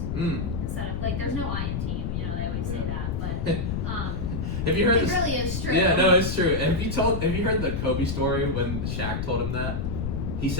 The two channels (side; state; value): left; noise; rumble, 2 dB below the sound